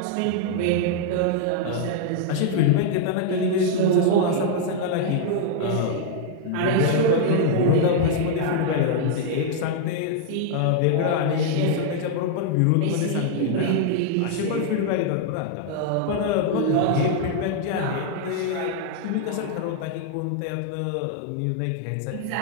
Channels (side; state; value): both; different; correlation -0.01